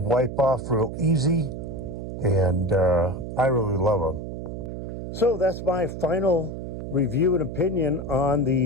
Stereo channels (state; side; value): noise; right; hum, 7 dB below the sound